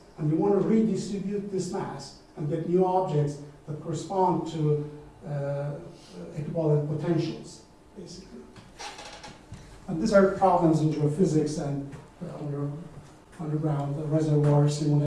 and you want to redistribute this mass and get new objects that correspond to equivalent potentials, basically. And these are problems in geophysics and underground reservoir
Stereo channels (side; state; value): both; identical; correlation 1.00